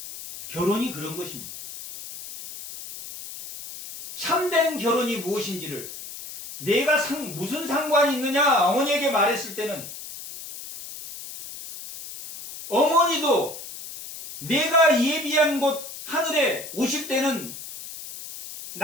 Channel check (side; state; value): left; noise; hiss, 12 dB below the sound